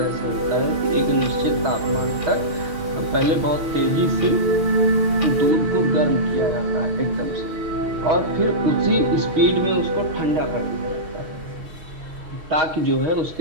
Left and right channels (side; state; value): left; late; 6.4 ms